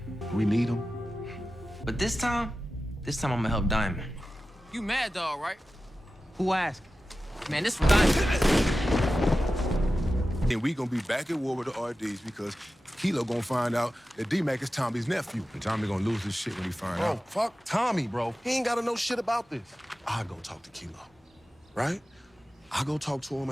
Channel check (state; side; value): normal; both; correlation 0.94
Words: We need him. But this time I'm gonna help Diamond. You Mad Dog, right? Who asked? Man, this for Diamond. And we gonna be back at war with the RDs because Kilo gonna find out that D-Mac is Tommy's nephew. And Tommy gonna lose his shit when he find Bro, out. fuck Tommy, bro. He ain't gotta know shit about this. I go talk to Kilo, right? I go talk to him